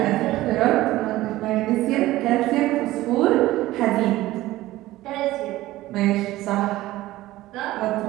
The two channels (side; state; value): left; quieter; 16.7 dB